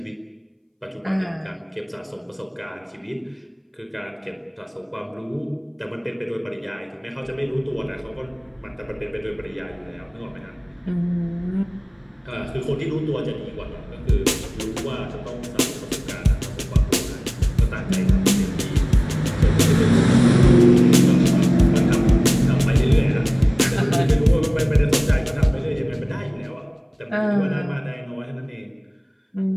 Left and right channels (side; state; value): both; identical; correlation 1.00